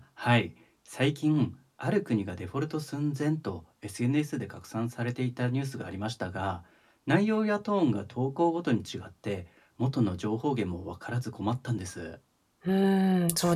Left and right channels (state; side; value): identical; both; correlation 1.00